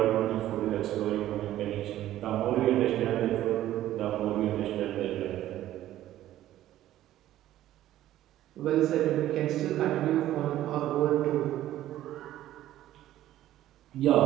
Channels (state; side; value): quieter; left; 13.5 dB